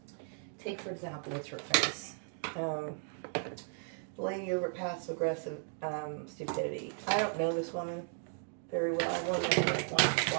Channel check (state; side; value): silent; left; 54 dB below the other